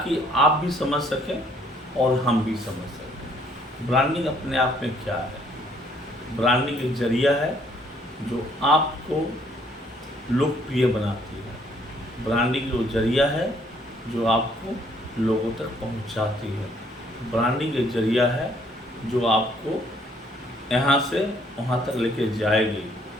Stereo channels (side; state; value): both; normal; correlation 0.64